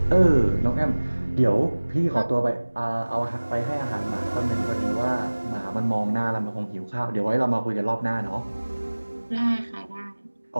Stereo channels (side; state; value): both; inverted; correlation -1.00